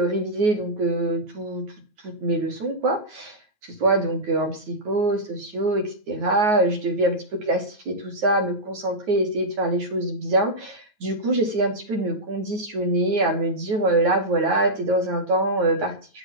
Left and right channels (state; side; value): late; left; 9.4 ms